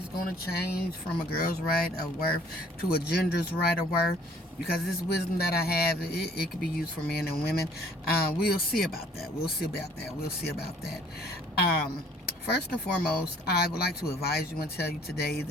going to change from a girl's right of worth to a gender's right of worth, because this wisdom that I have, it could be used for men and women. We'll see about that. We'll see about that. We'll see about that. First and foremost, I would like to advise you and tell you today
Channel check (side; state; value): both; normal; correlation 0.57